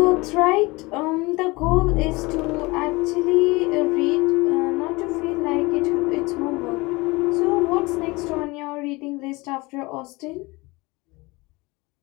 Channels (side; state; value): right; quieter; 23.7 dB